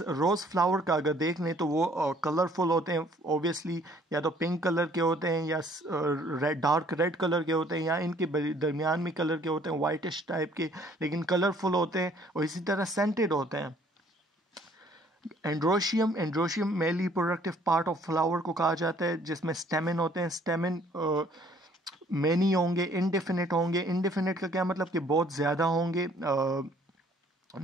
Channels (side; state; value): both; normal; correlation 0.59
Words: फ्लावर का अगर देख लें तो वो कलरफुल होते हैं ऑब्वियसली, या तो पिंक कलर के होते हैं या डार्क रेड कलर के होते हैं, या इनके दरमियान में कलर के होते हैं वाइटिश टाइप के, लेकिन कलरफुल होते हैं और इसी तरह सेंटेड होते हैं। Androecium male reproductive part of flower को कहा जाता है, जिसमें स्टेमिन होते हैं। स्टेमिन मैनी होंगे, इनडेफिनिट होंगे। इनडेफिनिट का क्या मतलब कि बहुत ज़्यादा होंगे,